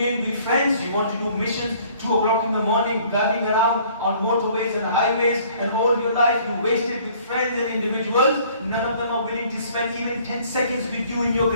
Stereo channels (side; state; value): both; inverted; correlation -0.57